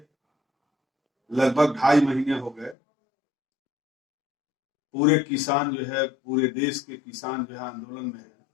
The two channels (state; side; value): drops out; right; at 2.8 s